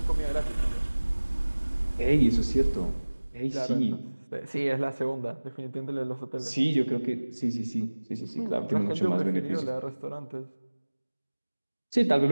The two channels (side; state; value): both; inverted; correlation -1.00